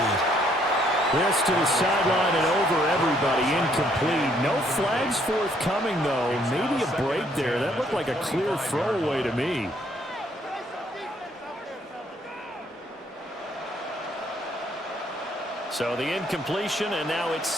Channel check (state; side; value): normal; both; correlation 0.67